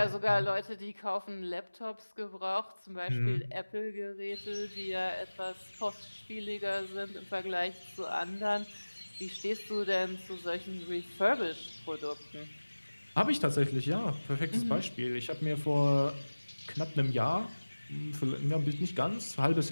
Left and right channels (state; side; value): inverted; both; correlation -1.00